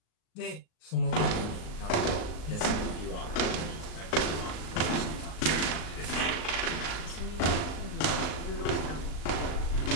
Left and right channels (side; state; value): right; late; 38 ms